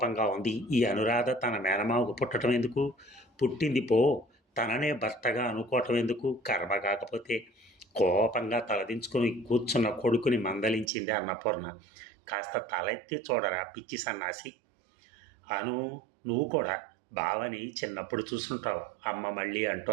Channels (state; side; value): drops out; left; at 10.9 s